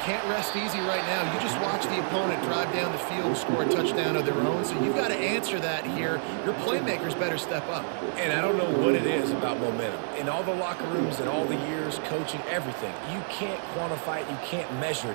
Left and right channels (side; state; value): left; silent; digital silence